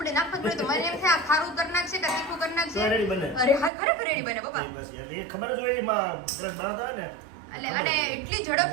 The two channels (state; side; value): drops out; left; at 3.7 s